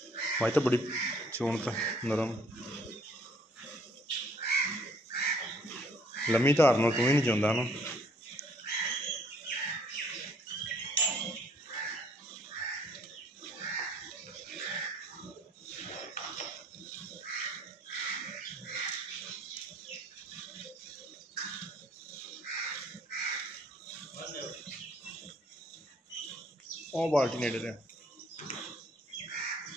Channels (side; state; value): both; normal; correlation 0.62